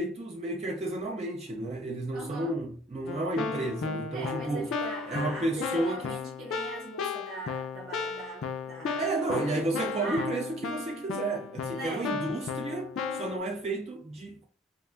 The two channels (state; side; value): normal; both; correlation 0.53